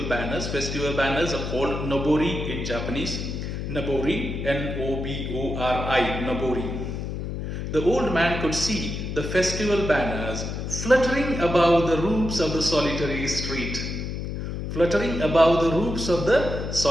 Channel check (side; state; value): left; noise; hum, 5 dB below the sound